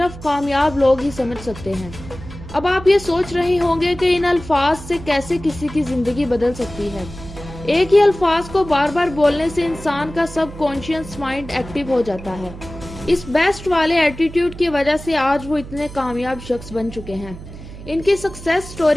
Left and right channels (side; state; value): right; noise; hum, 14 dB below the sound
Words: کامیاب لوگ ہی سمجھ سکتے ہیں۔ اب آپ یہ سوچ رہے ہوں گے کہ ان الفاظ سے کیسے کسی کی زندگی بدل سکتی ہے۔ ایک ہی الفاظ کو بار بار بولنے سے انسان کا سب کانشیس مائنڈ ایکٹیو ہو جاتا ہے۔ اس بیسٹ والے ایٹیٹیوڈ کی وجہ سے آج وہ اتنے کامیاب شخص بن چکے ہیں۔ ان کی سکسیس